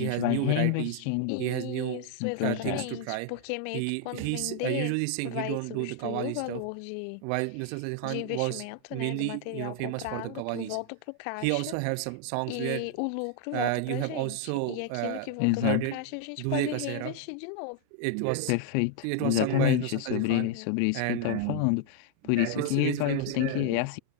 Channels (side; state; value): both; different; correlation 0.00